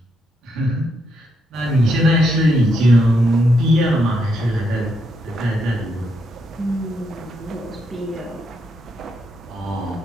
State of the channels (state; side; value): normal; both; correlation 0.78